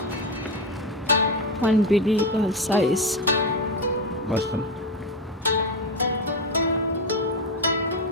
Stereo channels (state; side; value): normal; both; correlation 0.15